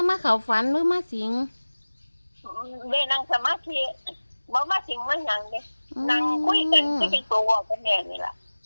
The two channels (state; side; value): inverted; both; correlation -1.00